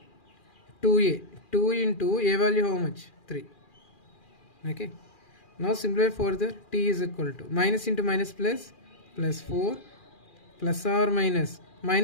2a. 2 into a value how much? 3. Okay. Now simplify further. T is equal to minus into minus plus 4 plus or minus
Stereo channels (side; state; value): right; late; 2.4 ms